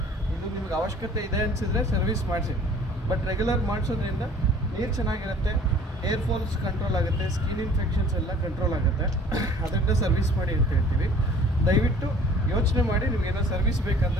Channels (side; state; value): both; normal; correlation 0.51